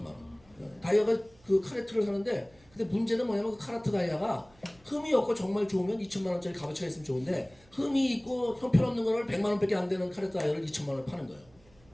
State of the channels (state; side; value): noise; right; hum, 29 dB below the sound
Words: 원. 다이아가 그 카레트를 사는데 근데 문제는 뭐냐면 그 카라트 다이아가 흠이 없고 정말 좋으면 2천만 원짜리 값어치가 있으면 좋은데 흠이 있고 형편없는 거를 100만 원밖에 안 되는 카라트 다이아를 2천만 원을 파는 거예요.